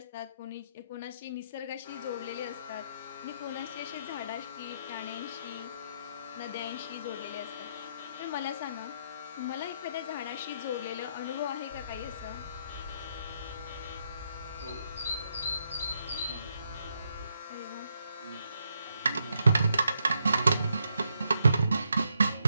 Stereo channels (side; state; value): both; inverted; correlation -0.78